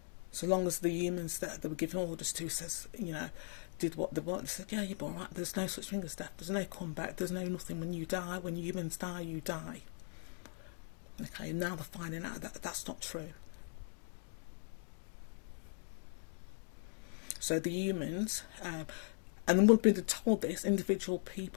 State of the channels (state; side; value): silent; right; 52 dB below the other